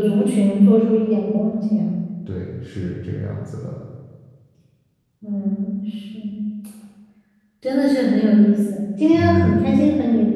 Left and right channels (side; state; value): both; identical; correlation 1.00